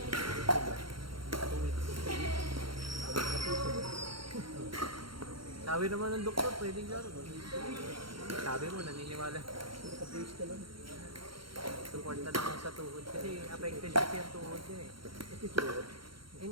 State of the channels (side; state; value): left; late; 0.73 ms